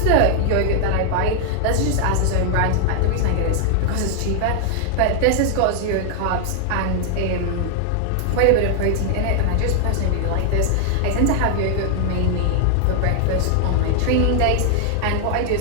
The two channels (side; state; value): both; different; correlation 0.00